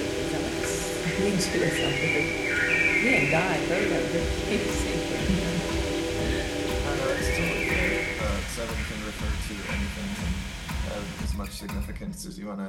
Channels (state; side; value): identical; both; correlation 1.00